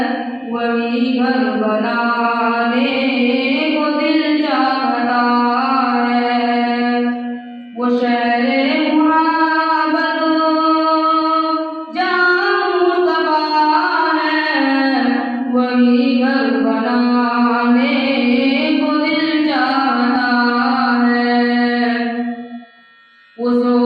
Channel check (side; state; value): both; identical; correlation 1.00